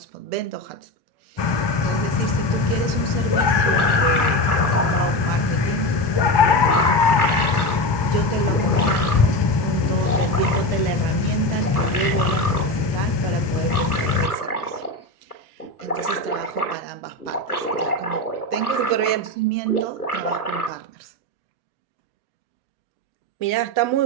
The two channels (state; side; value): late; right; 1.2 ms